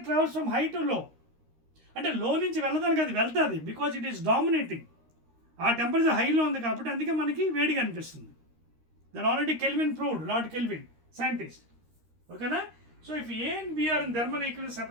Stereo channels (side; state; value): left; late; 13 ms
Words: travels from high to low అంటే లో నుంచి వెళ్ళదానికి అది వెళ్తుంది because it is dominating ఆ temperature హైలో ఉంది కాబట్టి అందుకే మనకి వేడిగా అనిపిస్తుంది that already Kelvin proved lord Kelvin scientist ఓకేనా so if A and B are in thermal equilibrium